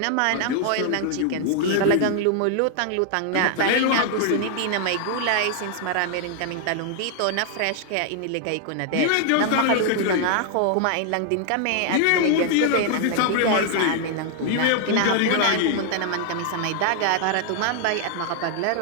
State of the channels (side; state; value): both; different; correlation 0.00